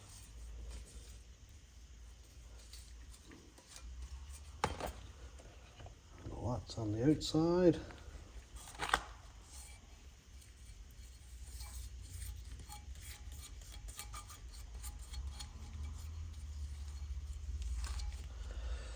Lots on the outside.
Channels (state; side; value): identical; both; correlation 1.00